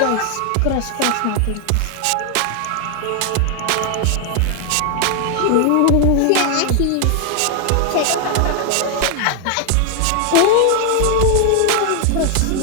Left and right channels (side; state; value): both; different; correlation 0.00